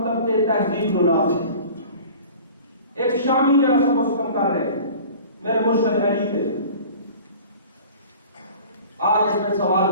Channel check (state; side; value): inverted; both; correlation -0.43